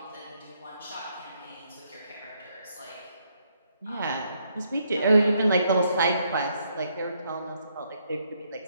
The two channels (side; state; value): both; inverted; correlation -0.73